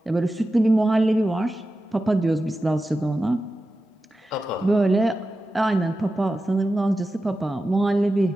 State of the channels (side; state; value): both; normal; correlation 0.93